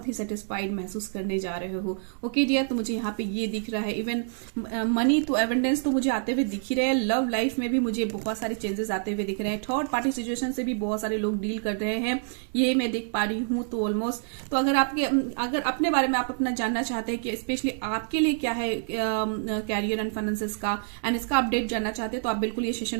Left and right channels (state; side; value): silent; left; 60 dB below the other